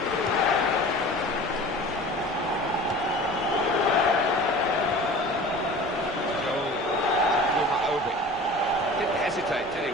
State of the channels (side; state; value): both; normal; correlation 0.40